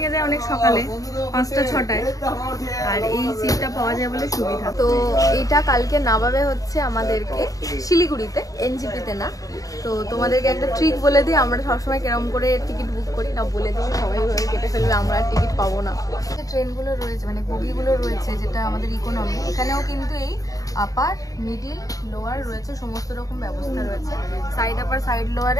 যায় অনেক সকালে, 5টা-6টায়, আর এই সিটটা পাওয়া যায় বলে সুবিধা। তো এইটা কালকে নামাবে হচ্ছে আমাদেরকে শিলিগুড়িতে, NGP-তে না। তো তোমাদেরকে একটা ট্রিক বলে দিই, আমরা সবসময় কেরম করে টিকিট বুক করি না, বলে দিই, সবাই ভাবে কেটে ফেলবে, আমরা আর টিকিট পাবো না। যে ট্রেনগুলো রয়েছে, মানে বগিগুলো রয়েছে, যেটা আমাদের ইকোনমি, এখানেও কিন্তু এই আপার, মিডিল, লোয়ার রয়েছে, সমস্ত রকম ব্যবস্থা রয়েছে। সাইড আপার, সাইড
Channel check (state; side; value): late; right; 0.17 ms